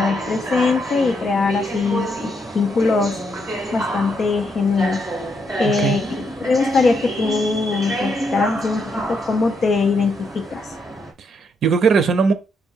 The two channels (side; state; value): both; normal; correlation 0.78